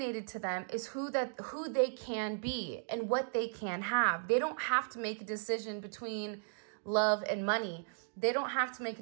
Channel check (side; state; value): left; silent; digital silence